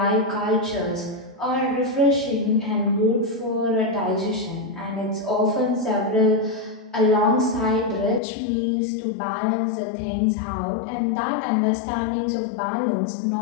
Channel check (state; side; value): drops out; right; at 8.2 s